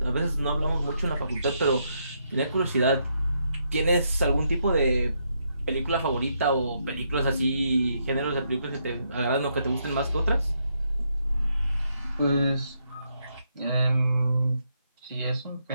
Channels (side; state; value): both; inverted; correlation -0.77